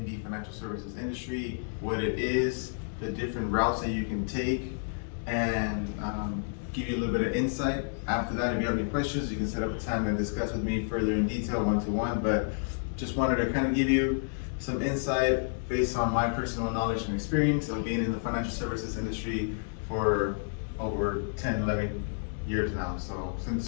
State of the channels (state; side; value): silent; right; digital silence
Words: the financial services industry, what it is, the different routes that you can take, and give you a little bit of insight. After that, if you have any questions, you can set up a time and discuss with me further in detail, one-to-one, but just wanted to kind of give you some insight based on my personal knowledge and experience of being in the financial services industry for over 10, 11 years now. So since